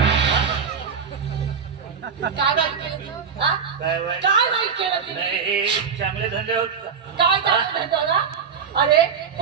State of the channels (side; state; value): left; quieter; 6.4 dB